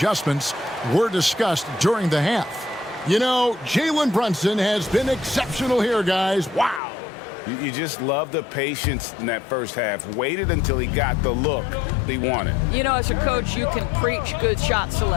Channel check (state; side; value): drops out; right; at 6.8 s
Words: were discussed during the half. You know, Jalen Brunson has been exceptional here, guys. Wow. You just love the patience in that first half. Waited until he got the look he wanted. You know, as a coach, you can preach good shot